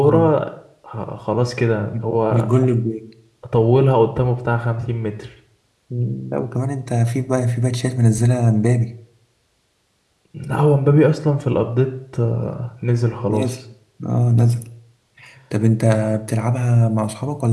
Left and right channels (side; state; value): both; identical; correlation 1.00